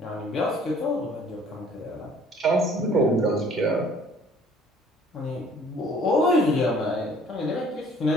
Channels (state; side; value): normal; both; correlation 0.55